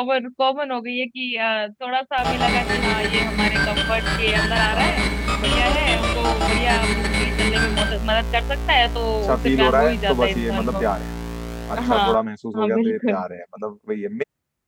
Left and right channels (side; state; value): both; identical; correlation 1.00